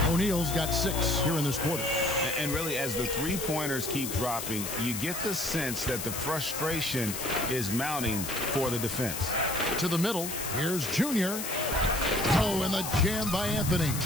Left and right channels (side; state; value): left; noise; hiss, 5 dB below the sound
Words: O'Neal's got 6 here in this quarter. And really, as the three-pointers keep dropping, you get the sense that the frustration is mounting for the defense. To the middle. Here's Junior. Oh, and the jam by Anthony.